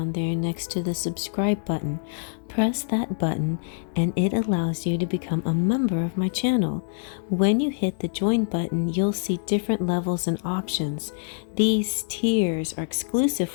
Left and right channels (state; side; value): silent; right; digital silence